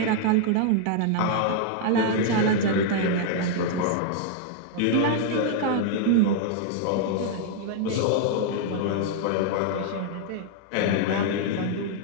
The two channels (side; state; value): both; different; correlation 0.00